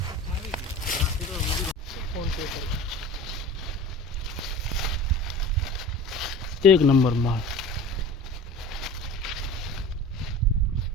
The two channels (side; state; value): both; normal; correlation 0.39